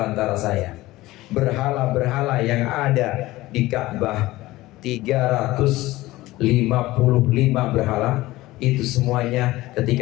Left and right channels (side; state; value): right; quieter; 18.1 dB